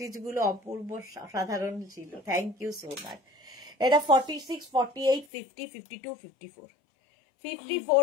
গুলো অপূর্ব সাধারণ ছিল, থ্যাংক ইউ সো মাচ। এটা 46, 48, 50, 52, 54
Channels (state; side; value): drops out; right; at 5.2 s